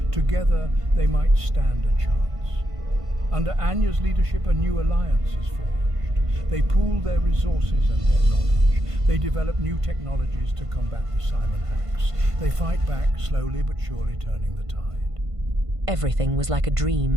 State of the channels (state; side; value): late; left; 1.5 ms